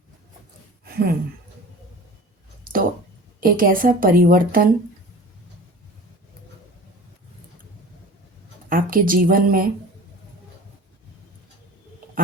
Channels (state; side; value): normal; both; correlation 0.39